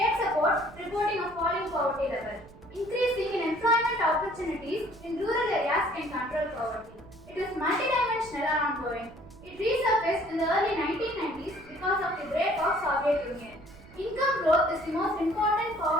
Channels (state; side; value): noise; right; rumble, 22 dB below the sound